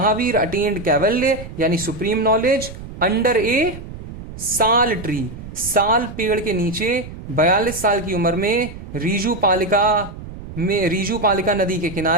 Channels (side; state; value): right; noise; rumble, 12 dB below the sound